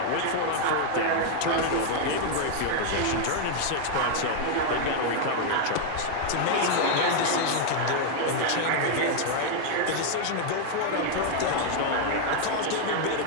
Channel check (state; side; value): different; both; correlation 0.00